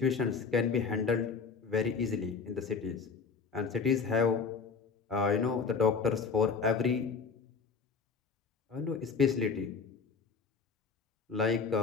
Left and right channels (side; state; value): right; quieter; 5.1 dB